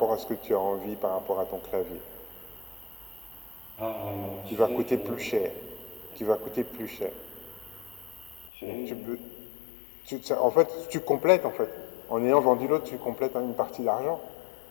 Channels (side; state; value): right; drops out; at 8.5 s